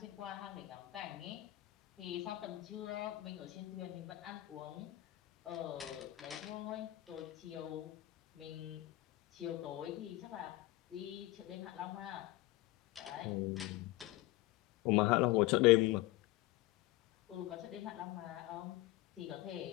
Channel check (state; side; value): quieter; right; 18.0 dB